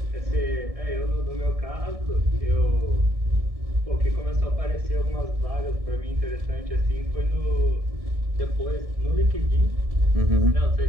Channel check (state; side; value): late; left; 1.7 ms